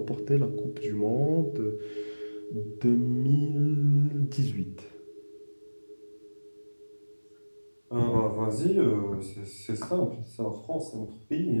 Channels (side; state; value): both; inverted; correlation -1.00